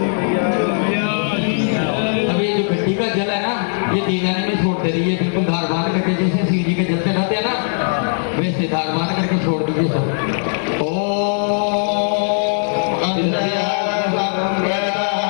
अभी जो गड्डी का जल है ना, ये दीवाने में छोड़ दे रही है, बिल्कुल धार बांध करके, जैसे शिव जी के जल से रहते हैं ना, वैसे धार बांध करके छोड़ दीजिए सब।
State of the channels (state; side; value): silent; right; digital silence